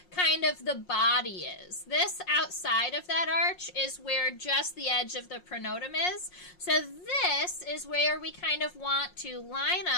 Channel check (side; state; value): right; late; 5.6 ms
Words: kind of the body is. This outside of that arch is where just the edge of the pronotum is. So this is where we kind of want to line